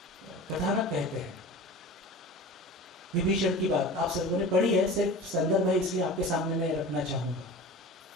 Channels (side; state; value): both; normal; correlation 0.36